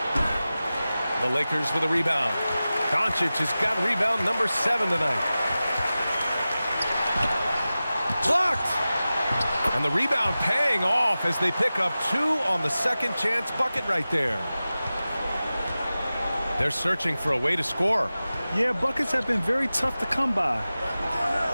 The Lakers with a rebound. Doncic has got rebound number 7 tonight. Blocked! And the rebound paying off as they pick up 2 on the second chance bucket right there. They're searching for a way to score. Yeah, buckets have been very tough to come by.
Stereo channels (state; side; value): inverted; both; correlation -0.95